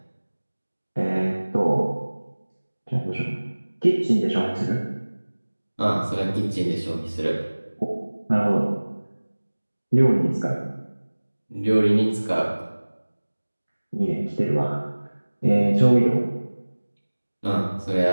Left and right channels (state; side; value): inverted; both; correlation -1.00